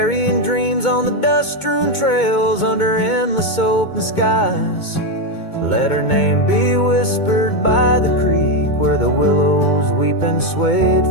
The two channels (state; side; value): late; right; 2.2 ms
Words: dreams on the dust-strewn trails under endless open skies. Let her name be whispered by the creek where the willows weep and swayed.